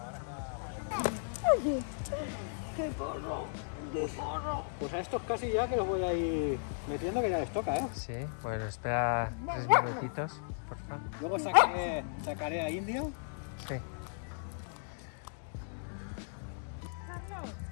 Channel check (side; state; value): right; silent; digital silence